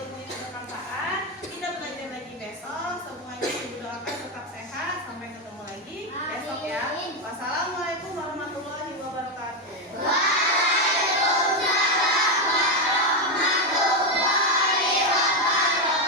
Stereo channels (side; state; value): both; normal; correlation 0.07